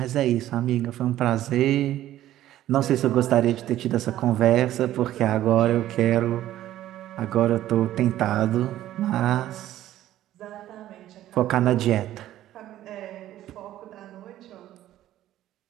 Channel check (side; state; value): left; quieter; 13.4 dB